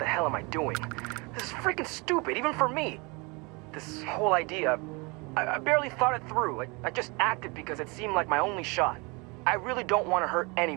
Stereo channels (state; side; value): quieter; left; 28.4 dB